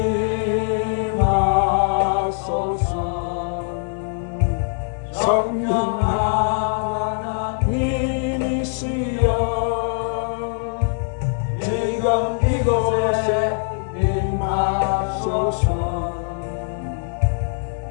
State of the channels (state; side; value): silent; right; digital silence